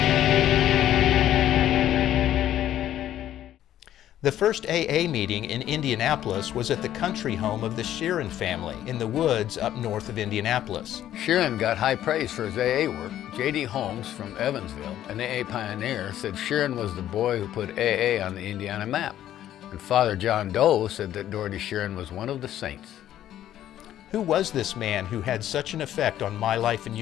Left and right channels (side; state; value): right; quieter; 12.0 dB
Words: The first AA meeting in Indianapolis was at the country home of the Sheeran family in the woods up north of Indianapolis. Sheeran got high praise for his AA work. J.D. Holmes from Evansville, an AA pioneer, said Sheeran was the boy who put AA on the Indiana map. And Father John Doe said that Dorothy Sheeran was one of the saints. Who was this man who had such an effect on my life and